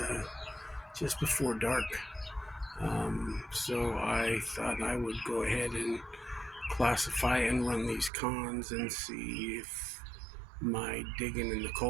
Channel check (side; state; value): left; drops out; at 8.1 s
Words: just before dark, so I thought I would go ahead and classify and run these cons and see if my digging in the